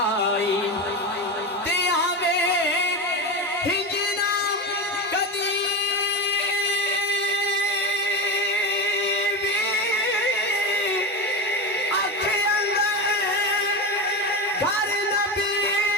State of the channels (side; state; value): both; normal; correlation 0.21